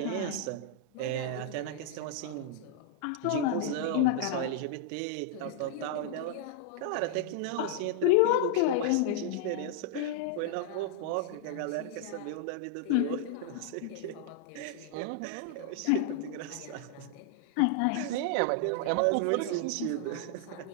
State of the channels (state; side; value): different; both; correlation -0.01